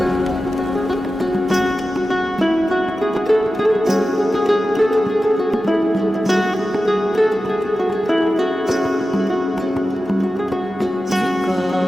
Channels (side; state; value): both; normal; correlation 0.93